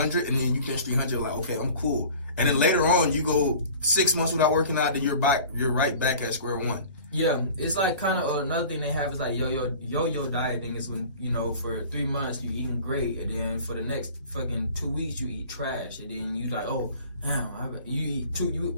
and then you bench 300. Like, okay, I'm cool. And then later on, you go 6 months without working out, then you're right back at square one. Yeah, it's like kind of another thing they have is like yo-yo dieting is when, you know, for 3 months you eating great, and then for the next fucking 2 weeks you eat trash, and then you like, oh, damn, you eat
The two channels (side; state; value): both; inverted; correlation -0.44